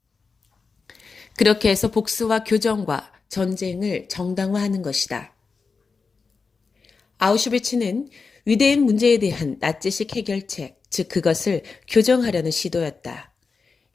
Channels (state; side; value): quieter; right; 4.7 dB